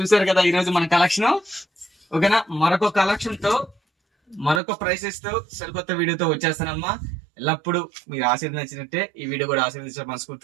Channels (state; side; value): drops out; left; at 4.6 s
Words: కదా ఈ రోజు మన కలెక్షన్. ఓకేనా? మరొక కలెక్షన్ తో, మరొక ప్రైసెస్ తో, సరికొత్త వీడియోతో వచ్చేస్తానమ్మా. ఎల్లప్పుడు మీరు ఆశీర్వదించినట్టే ఈ వీడియో కూడా ఆశీర్వదించే